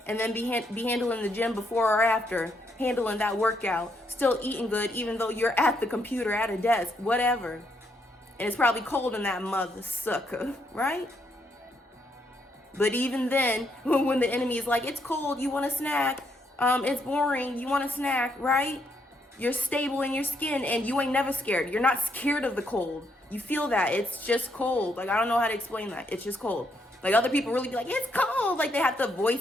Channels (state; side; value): normal; both; correlation 0.75